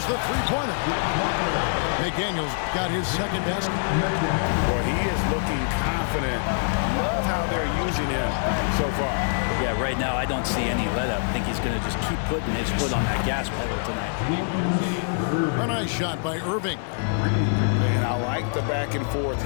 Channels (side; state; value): right; silent; 62 dB below the other